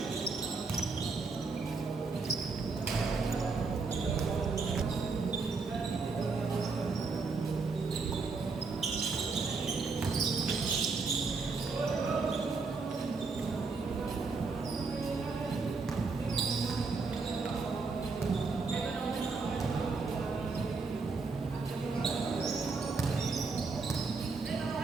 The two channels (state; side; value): quieter; left; 4.3 dB